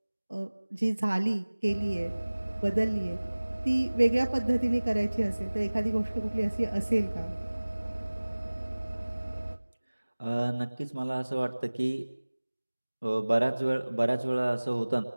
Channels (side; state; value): both; inverted; correlation -1.00